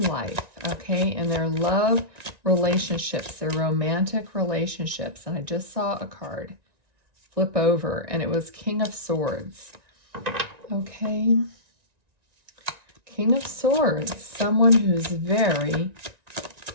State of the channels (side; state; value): left; late; 1.9 ms